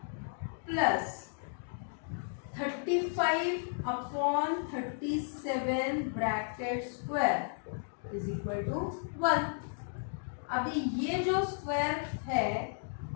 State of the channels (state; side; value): silent; right; digital silence